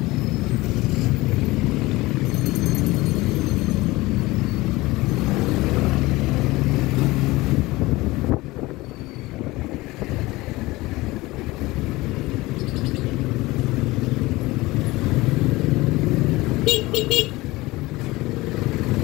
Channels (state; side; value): quieter; right; 20.3 dB